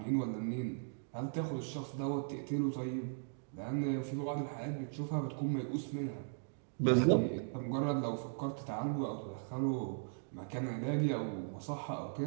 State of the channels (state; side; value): silent; left; digital silence